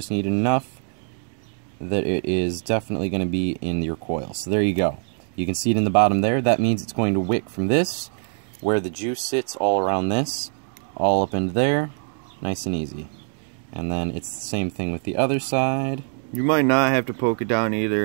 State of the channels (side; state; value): left; silent; 63 dB below the other